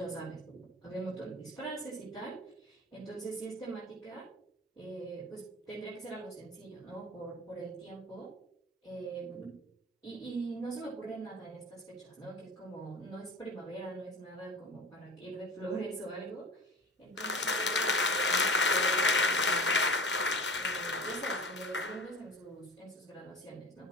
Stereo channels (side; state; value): both; normal; correlation 0.36